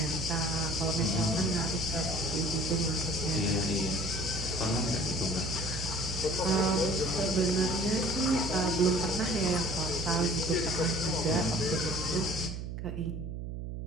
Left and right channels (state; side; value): noise; right; hum, 6 dB below the sound